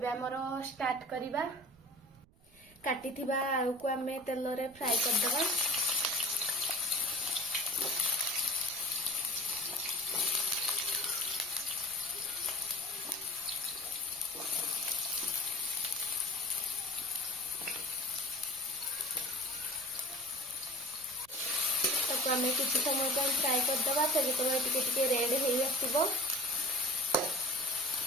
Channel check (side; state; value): right; noise; rumble, 29 dB below the sound